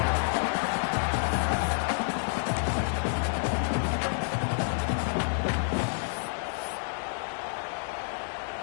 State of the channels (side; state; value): right; silent; 59 dB below the other